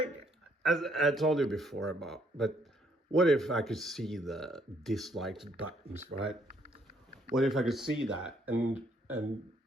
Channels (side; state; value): both; normal; correlation 0.68